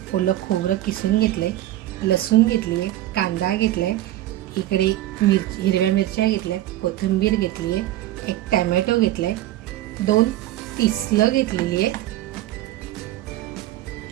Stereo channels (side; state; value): left; quieter; 14.6 dB